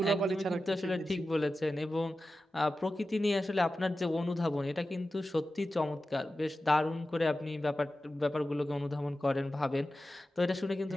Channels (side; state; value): both; normal; correlation 0.93